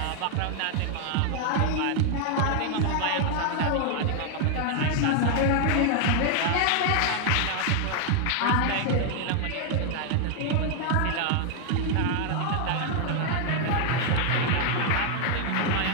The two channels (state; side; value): different; both; correlation 0.00